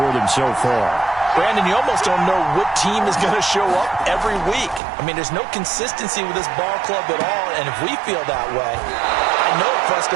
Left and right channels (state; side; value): drops out; left; at 4.8 s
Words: them so far. Brandon, you almost don't know what team is going to show up every week. I mean, there's no consistency with this ball club at all, and if we feel that way, I know it